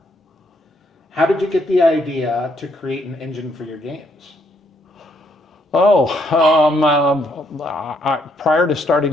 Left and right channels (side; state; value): both; normal; correlation 0.71